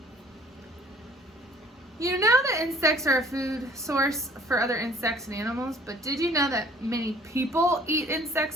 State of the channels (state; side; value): normal; both; correlation 0.53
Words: You know that insects are a food source for other insects and animals, but did you know that many people eat